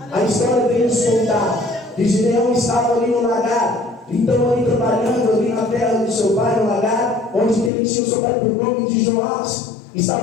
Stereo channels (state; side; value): drops out; right; at 7.7 s